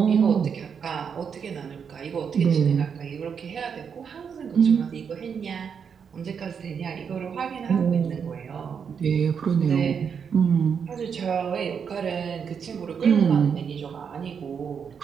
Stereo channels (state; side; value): quieter; left; 6.8 dB